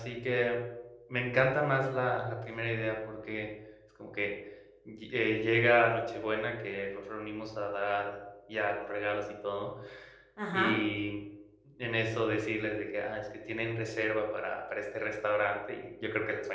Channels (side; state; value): both; identical; correlation 1.00